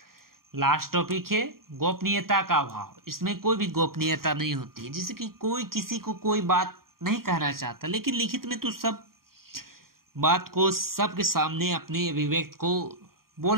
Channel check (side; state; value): left; late; 0.93 ms